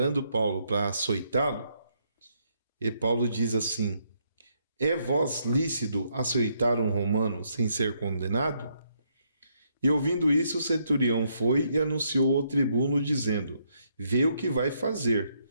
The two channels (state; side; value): inverted; both; correlation -0.74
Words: Paulo para açoitá-lo, e Paulo diz assim: é vós lícito açoitar um romano sem ser condenado? E ouvindo isso, o centurião foi e anunciou ao tribuno, dizendo: vê o que vai fazer,